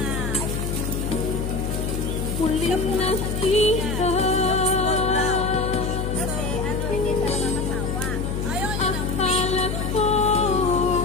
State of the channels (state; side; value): noise; left; hum, 2 dB below the sound